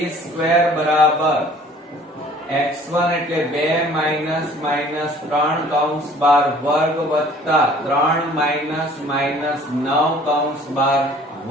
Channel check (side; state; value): both; normal; correlation 0.52